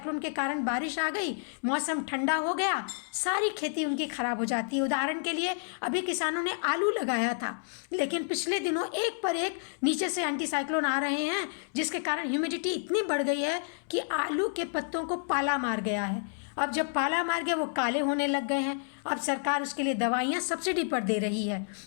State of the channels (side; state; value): right; silent; digital silence